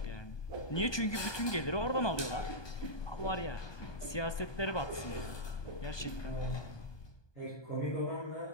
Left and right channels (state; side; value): late; right; 1.2 ms